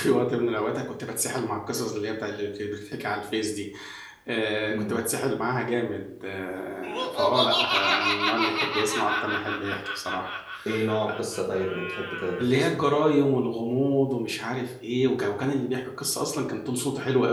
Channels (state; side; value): identical; both; correlation 1.00